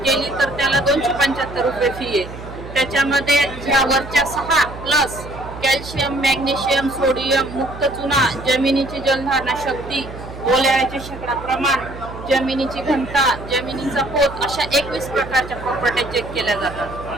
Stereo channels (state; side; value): noise; right; hum, 13 dB below the sound